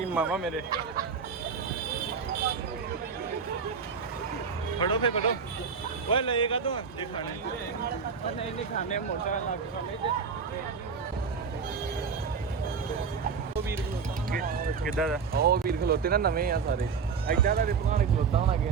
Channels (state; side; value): quieter; left; 5.9 dB